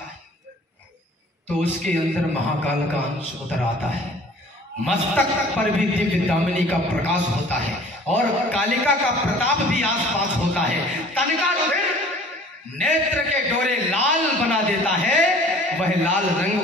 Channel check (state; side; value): normal; both; correlation 0.49